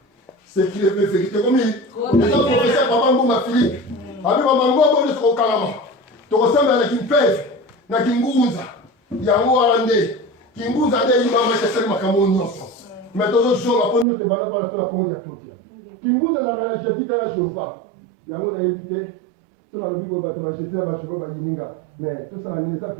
C'est qui est vérité comme il. Les autres professeurs papa mouba Philippe. Abi mamango nde soko kalama. Toko samba na kimpeve na kingunza. Yango alande. Kingunza nde imama chasali makambo nyonso. Mais tozo zonga ponyo se bana para sala ponyo ya totia. Kingunza za na jesita ya shompa. Yango na éviter. Sur la Bible bato ba jesita ba shoko ba yininga. Mais tout ça ni ça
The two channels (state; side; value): drops out; left; at 14.1 s